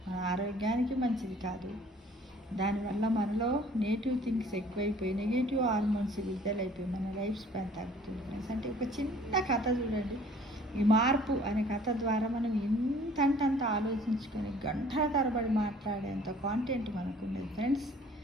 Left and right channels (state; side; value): normal; both; correlation 0.53